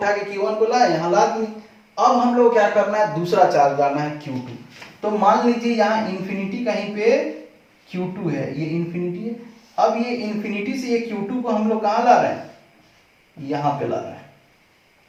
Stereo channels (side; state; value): both; identical; correlation 1.00